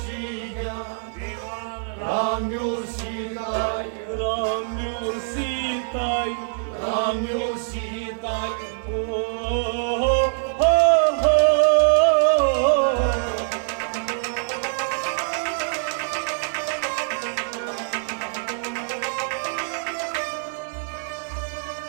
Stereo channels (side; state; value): left; silent; 57 dB below the other